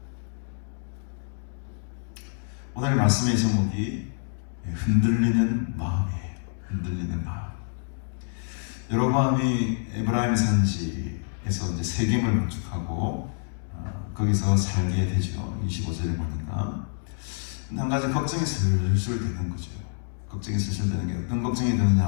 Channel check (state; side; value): silent; right; digital silence